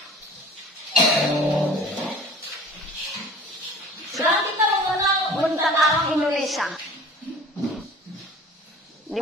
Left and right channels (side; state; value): both; normal; correlation 0.43